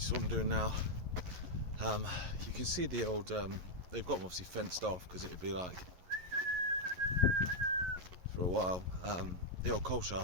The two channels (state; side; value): late; left; 11 ms